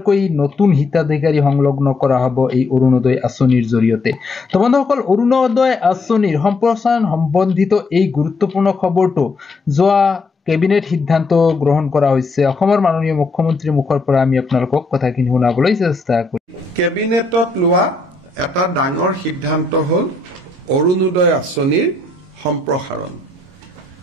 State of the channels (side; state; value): right; quieter; 3.3 dB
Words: নতুন হিতাধিকাৰী সংলগ্ন কৰা হ'ব এই অৰুণোদয় আঁচনিৰ জৰিয়তে তো বন্ধুসকল অৰুণোদয় আঁচনিৰ সম্প্ৰসাৰণ সম্বন্ধিত এই গুৰুত্বপূৰ্ণ খবৰটো যোৱা কেবিনেট সিদ্ধান্ত গ্ৰহণ কৰা হৈছে অসমৰ মাননীয় মুখ্যমন্ত্ৰীৰ মুখৰ পৰা আমি আপোনালোকক কথাখিনি শুনাবলৈ চেষ্টা কৰিম কেবিনেটত লোৱা এটা ডাঙৰ সিদ্ধান্ত হ'ল অৰুণোদয় আঁচনিৰ সম্প্ৰসাৰণ